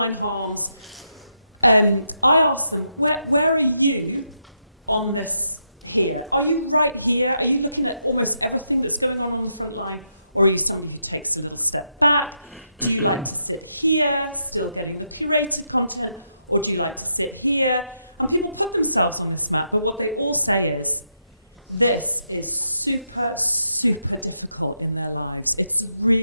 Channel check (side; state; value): both; inverted; correlation -0.81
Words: harms, I ask them, where are you on this here? Are you right here? Are you looking at almost everything that's going on the front line? Or are you somebody who takes a little step back? Do you like to sit here, still getting the curated content? Or do you like to sit here? And people put themselves on this map, but what they all say is, this is super, super difficult in their lives. It's